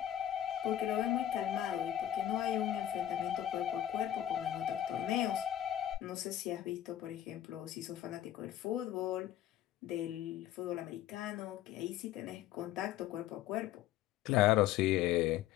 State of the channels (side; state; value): right; quieter; 12.0 dB